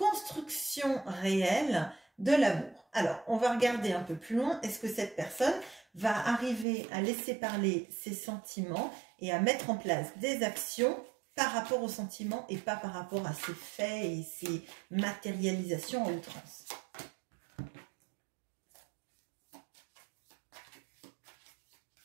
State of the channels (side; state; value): left; drops out; at 6.7 s